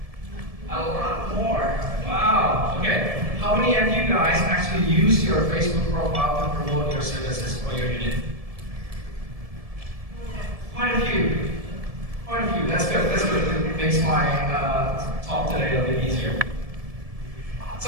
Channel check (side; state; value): left; late; 1.7 ms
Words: A lot more. Wow. Okay. How many of you guys actually use your Facebook profile to promote your services or your unit? Quite a few. Quite a few. That's good. That's good. It makes my talk today a little bit easier.